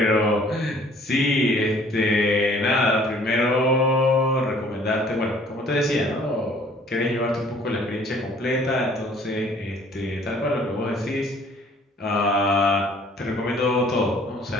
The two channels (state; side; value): normal; both; correlation 0.56